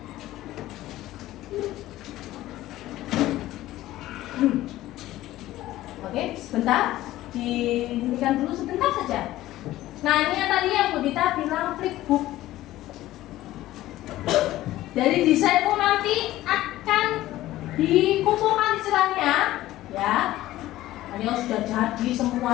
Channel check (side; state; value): right; quieter; 15.5 dB